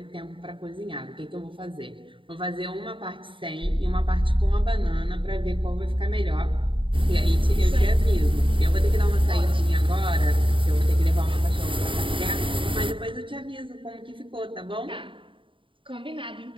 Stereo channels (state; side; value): late; left; 0.25 ms